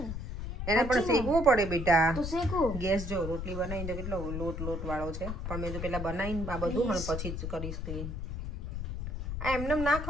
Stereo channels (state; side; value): noise; left; rumble, 5 dB below the sound